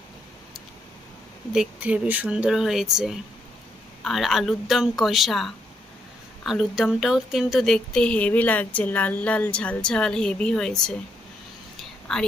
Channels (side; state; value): both; normal; correlation 0.76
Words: দেখতে হেবি সুন্দর হয়েছে। আর আলুর দম কষা, আলুর দমটাও কিন্তু দেখতে হেভি লাগছে, লাল লাল ঝাল ঝাল হেভি হয়েছে। আর